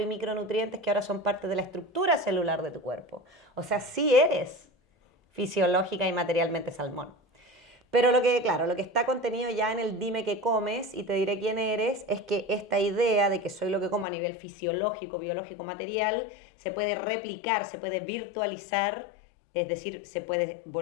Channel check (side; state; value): right; drops out; at 14.1 s